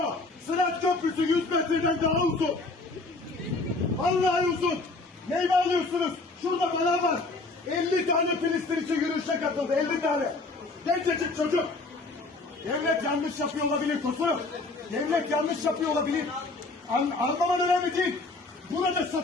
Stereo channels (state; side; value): quieter; right; 3.4 dB